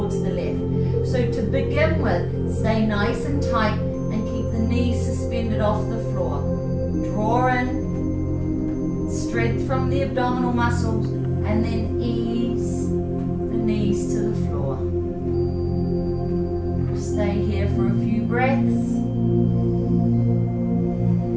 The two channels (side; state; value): both; identical; correlation 1.00